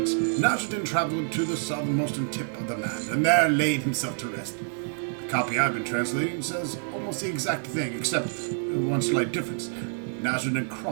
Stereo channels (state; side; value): silent; left; 60 dB below the other